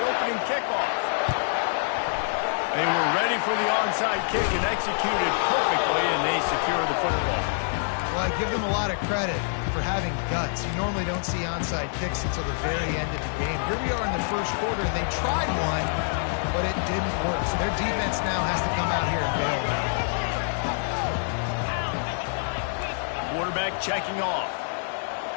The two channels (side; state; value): right; silent; digital silence